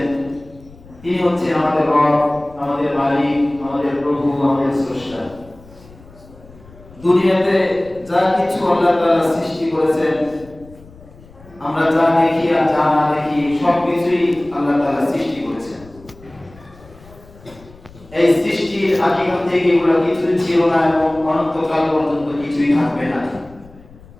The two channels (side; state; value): left; noise; rumble, 23 dB below the sound